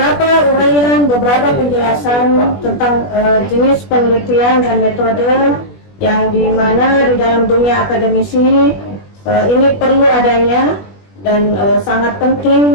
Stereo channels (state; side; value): late; right; 21 ms